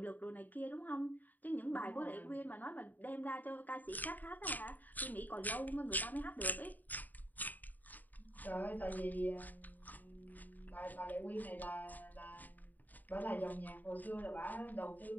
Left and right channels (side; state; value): right; late; 0.084 ms